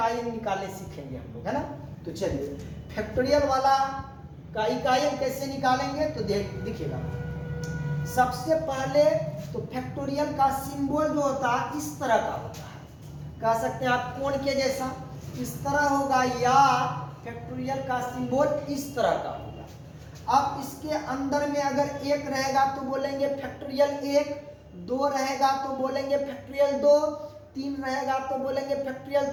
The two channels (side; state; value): both; identical; correlation 1.00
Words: अंक निकालने सीखेंगे हम लोग, है ना। तो चलिए फैक्टोरियल वाला का इकाई अंक कैसे निकालेंगे तो दिखेगा। सबसे पहले तो फैक्टोरियल का सिंबल जो होता है इस तरह का होता है, कह सकते हैं आप कोण के जैसा इस तरह होगा, या फैक्टोरियल का सिंबल इस तरह का होगा। अब इसके अंदर में अगर एक रहेगा तो बोलेंगे फैक्टोरियल 1, 2 रहेगा तो बोलेंगे फैक्टोरियल 2, 3 रहेगा तो बोलेंगे फैक्टोरियल